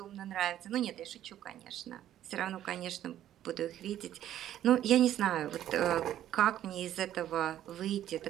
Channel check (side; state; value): left; quieter; 11.8 dB